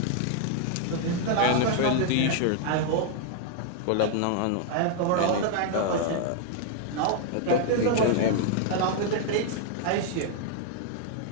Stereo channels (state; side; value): different; both; correlation 0.00